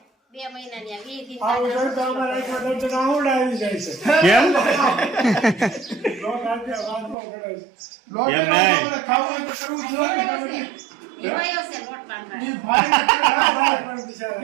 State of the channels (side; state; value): left; drops out; at 7.2 s